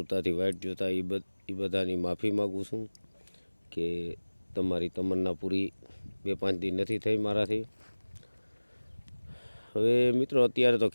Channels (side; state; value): both; inverted; correlation -1.00